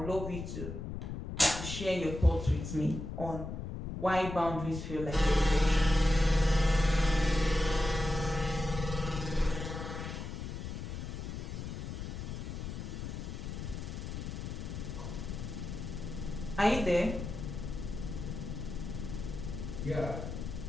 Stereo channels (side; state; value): left; noise; rumble, 6 dB below the sound